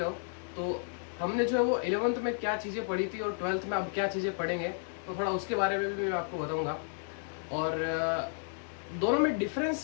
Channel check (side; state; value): right; silent; 56 dB below the other